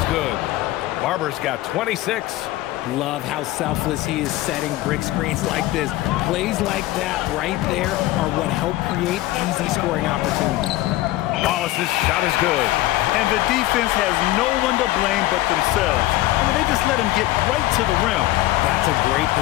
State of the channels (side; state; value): right; quieter; 16.6 dB